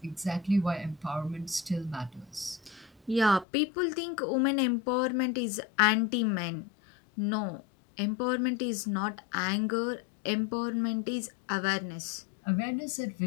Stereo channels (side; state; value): right; drops out; at 3.5 s